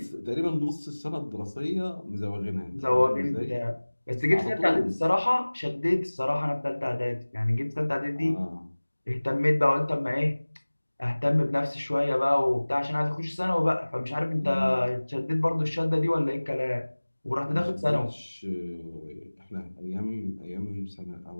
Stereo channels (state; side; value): inverted; both; correlation -1.00